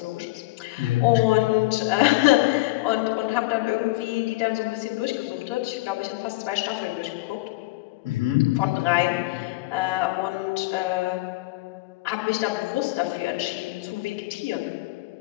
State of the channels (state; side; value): quieter; right; 20.2 dB